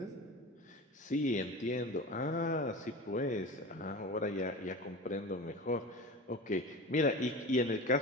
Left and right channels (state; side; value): normal; both; correlation 0.31